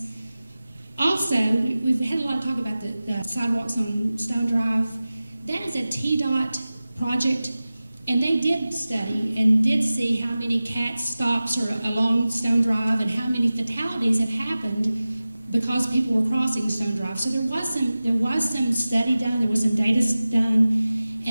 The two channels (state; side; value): inverted; both; correlation -0.96